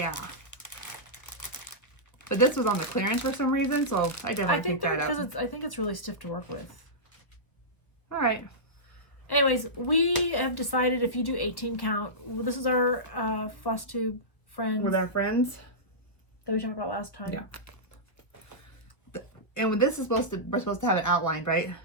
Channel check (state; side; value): late; right; 1.1 ms